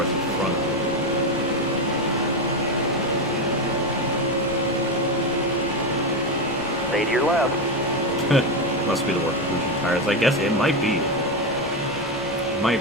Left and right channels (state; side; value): normal; both; correlation 0.12